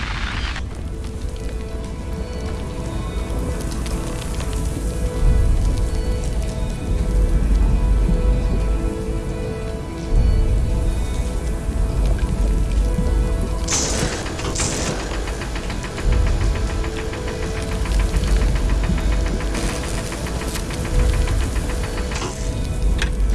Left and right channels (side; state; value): both; identical; correlation 1.00